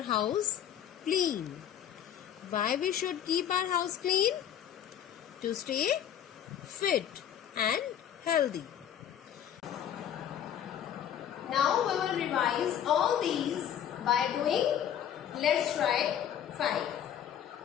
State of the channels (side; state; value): right; quieter; 9.8 dB